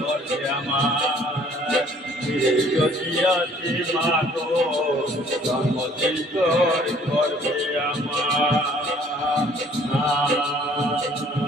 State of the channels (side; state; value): both; normal; correlation 0.57